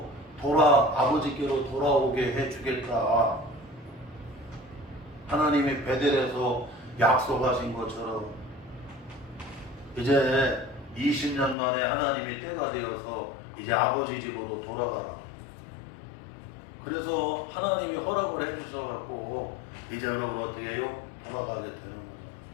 아버지께로 돌아오게 해주겠다. 하나님이 베델에서 약속하신 것처럼 이제 20년 만에 하나님이 때가 되어서 이제 아버지 집으로 돌아가라. 그래서 하나님이 허락을 해주셔갖고 이제 여러분 어떻게 해요? 돌아가게 되는 거죠.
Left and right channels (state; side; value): drops out; right; at 11.6 s